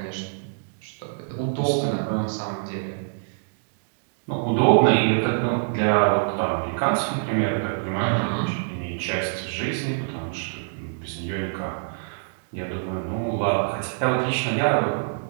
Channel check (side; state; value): left; silent; digital silence